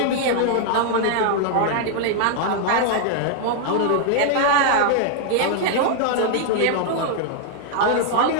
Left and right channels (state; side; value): different; both; correlation -0.01